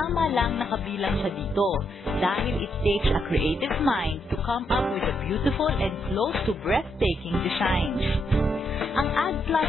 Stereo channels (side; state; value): both; normal; correlation 0.78